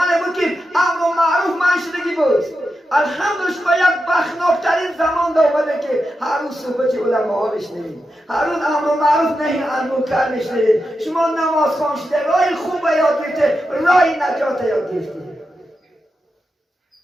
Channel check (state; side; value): normal; both; correlation 0.88